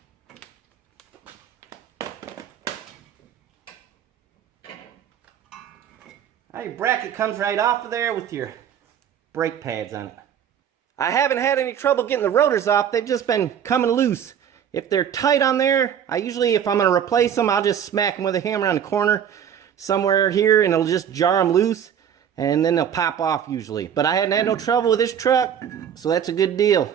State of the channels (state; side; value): quieter; left; 8.9 dB